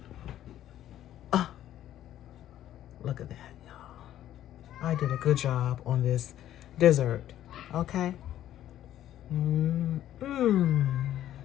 Oh, look at that, y'all. I did a good job on this dessert. Okay?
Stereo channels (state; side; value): quieter; right; 12.2 dB